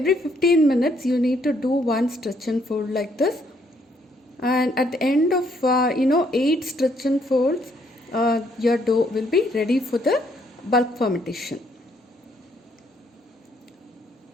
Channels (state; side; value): normal; both; correlation 0.69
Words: 15 minutes you need to do one stretch and fold like this, and at the end of 8 stretch and folds, your dough will be ready for the bulk fermentation.